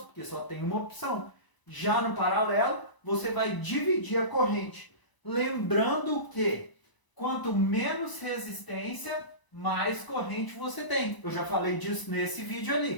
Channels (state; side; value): late; right; 1.0 ms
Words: só tem uma opção. Já no paralelo, você vai dividir a corrente. Lembrando que quanto menos resistência, mais corrente você tem. Eu já falei disso nesse vídeo